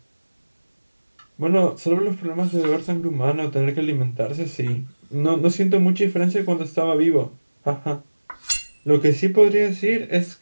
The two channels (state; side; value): inverted; both; correlation -1.00